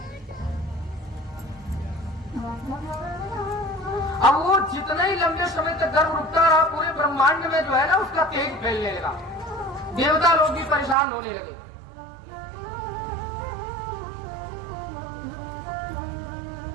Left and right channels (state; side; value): drops out; left; at 11.0 s